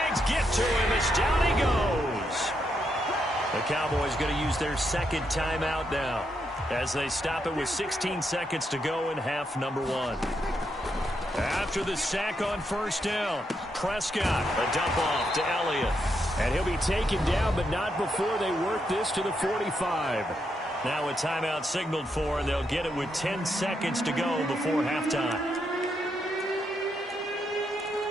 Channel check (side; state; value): both; normal; correlation 0.80